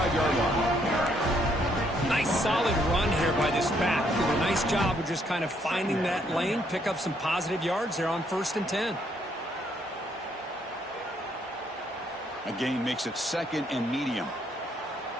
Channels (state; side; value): normal; both; correlation 0.70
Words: line. Nice solid run here by this back. Did a nice job of just kind of finding that lane, pick up some positive yards there on 1st and 10. A gain makes it 2nd and medium.